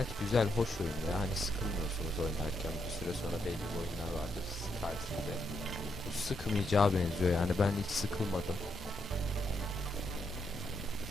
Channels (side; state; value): both; normal; correlation 0.79